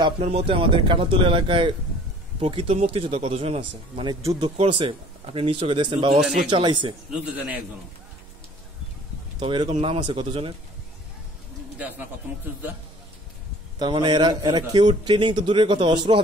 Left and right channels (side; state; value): both; normal; correlation 0.51